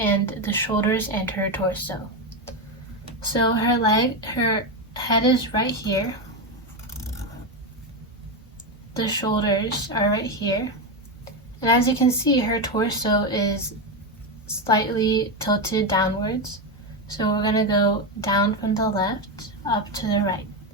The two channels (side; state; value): both; normal; correlation 0.11